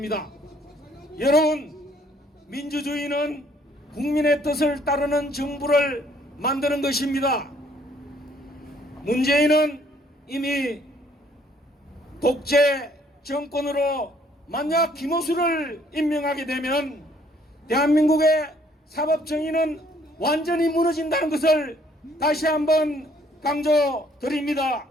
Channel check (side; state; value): both; normal; correlation 0.63